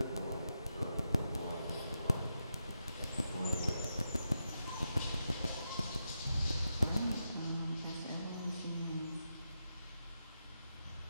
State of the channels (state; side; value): inverted; both; correlation -0.86